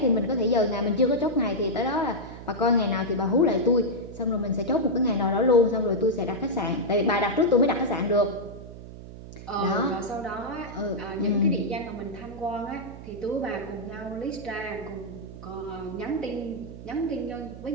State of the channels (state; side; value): noise; right; hum, 14 dB below the sound